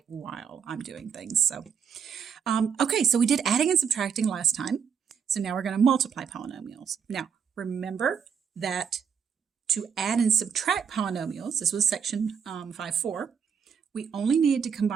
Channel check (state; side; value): quieter; left; 7.0 dB